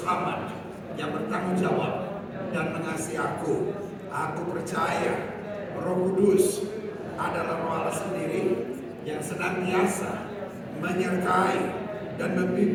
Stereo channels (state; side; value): identical; both; correlation 1.00